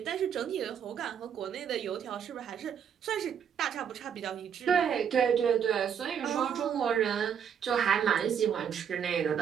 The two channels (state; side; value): quieter; left; 8.0 dB